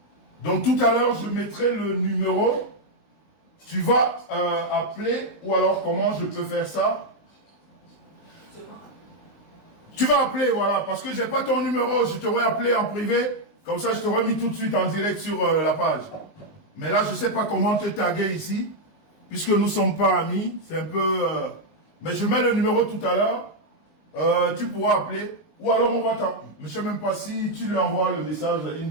Donc tout à l'heure, je mettrai le numéro. Tu vas appeler, ou alors comment je peux faire ça? Tu vas appeler, voilà, parce que j'ai pas ton numéro, je t'aurais appelé en privé, comme ça je t'aurais mis tout de suite en direct sur la page. Mais là, je sais pas comment te taguer ici, puisque nous sommes pas amis, c'est un peu... Mais je mets le numéro tout à l'heure, tu pourras appeler, ou alors on va t'en... Mais je sais même pas si tu lui envoies le message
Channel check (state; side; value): late; right; 19 ms